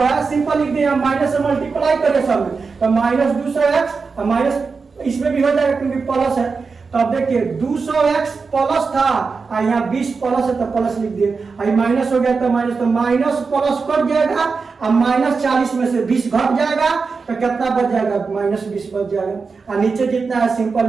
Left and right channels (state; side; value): quieter; left; 4.8 dB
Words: है सिंपल लिख दिया माइनस से मल्टीप्लाई करें सब में तो माइनस 200x माइनस इसमें भी हो जाएगा क्योंकि प्लस है तो अब देखिए 200x प्लस था और यहाँ 20 प्लस है तो प्लस लिख दिए और माइनस हो गया तो माइनस प्लस कट जाएगा और माइनस 40 में से 20 घट जाएगा तो कितना बच जाएगा माइनस 20 बच जाएगा और नीचे जितना है